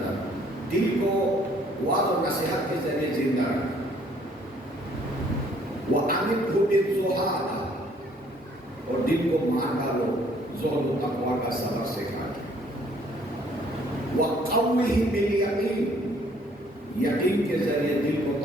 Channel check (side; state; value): both; normal; correlation 0.61